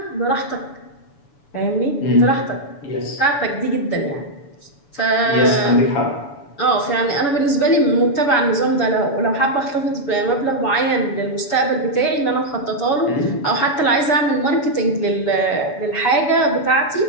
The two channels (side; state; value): right; late; 7.0 ms